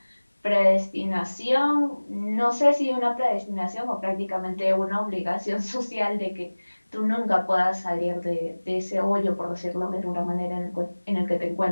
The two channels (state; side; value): inverted; both; correlation -1.00